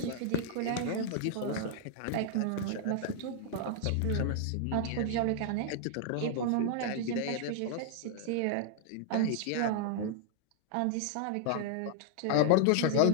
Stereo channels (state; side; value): different; both; correlation 0.00